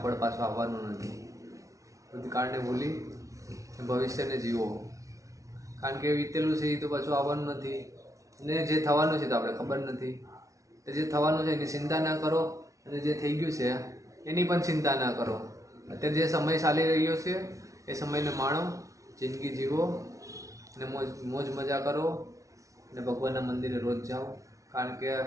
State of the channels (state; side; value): late; left; 0.16 ms